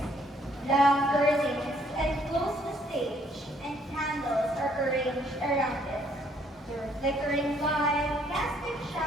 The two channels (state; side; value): normal; both; correlation 0.66